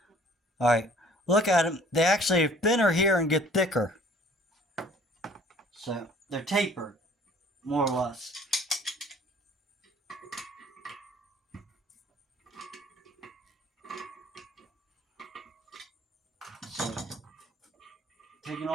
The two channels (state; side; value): normal; both; correlation 0.54